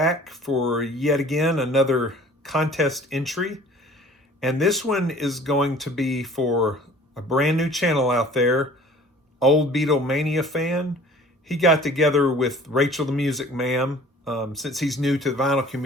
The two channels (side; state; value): both; normal; correlation 0.49